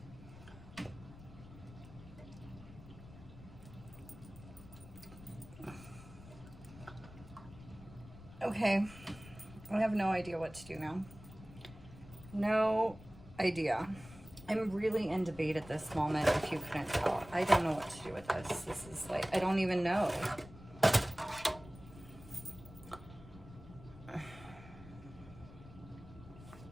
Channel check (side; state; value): left; noise; rumble, 17 dB below the sound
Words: Okay, I have no idea what to do now. No idea. I'm really in debate at this moment, if you couldn't tell. I don't know what to do with this. This is like, I don't even know.